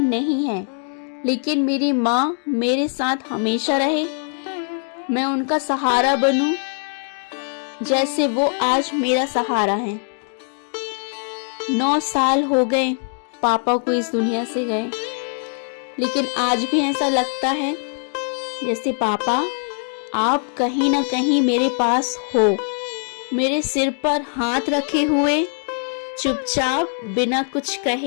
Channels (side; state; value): right; silent; 64 dB below the other